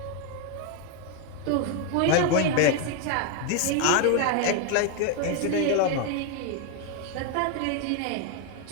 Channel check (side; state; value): both; different; correlation 0.01